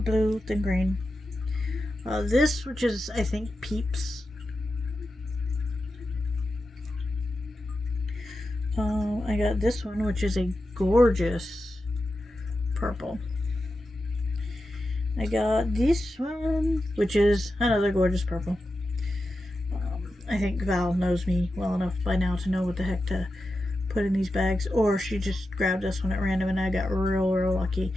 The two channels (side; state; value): both; normal; correlation 0.90